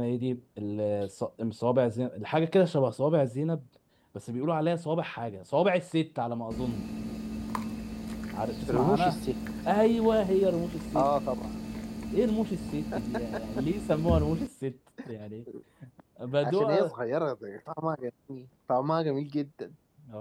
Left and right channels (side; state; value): both; identical; correlation 1.00